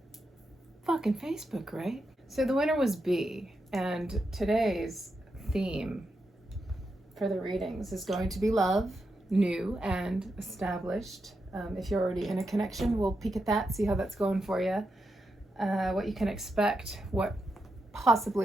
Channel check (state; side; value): normal; both; correlation 0.85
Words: fucking Facebook, right? So the winner was B, and today's theme for the readings is going to be love, new and established. If you're already in a connection, we'll peek at that, see how that's going for you, what you can expect, what